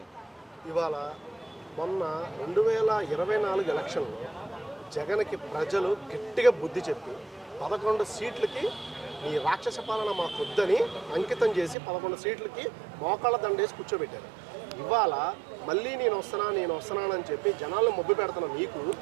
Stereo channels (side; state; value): left; drops out; at 11.8 s